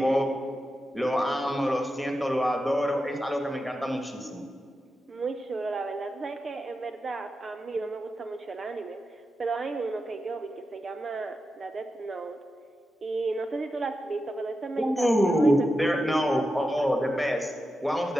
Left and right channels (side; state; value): both; normal; correlation 0.90